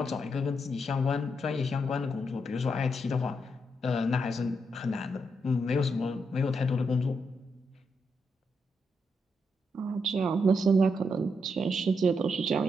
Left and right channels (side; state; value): both; normal; correlation 0.80